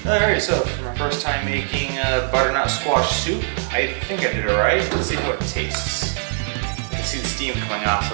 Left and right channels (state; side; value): silent; left; digital silence